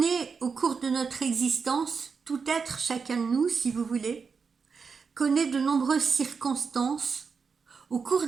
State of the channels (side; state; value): left; quieter; 5.5 dB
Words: au cours de notre existence, tout être, chacun de nous, si vous voulez, connaît de nombreuses circonstances au cours